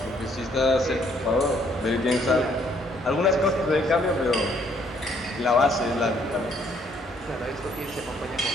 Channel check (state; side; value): normal; both; correlation 0.67